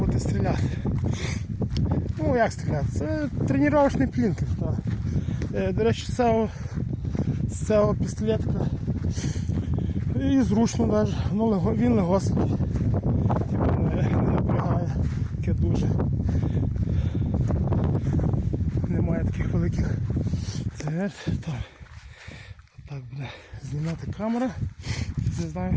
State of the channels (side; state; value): both; identical; correlation 1.00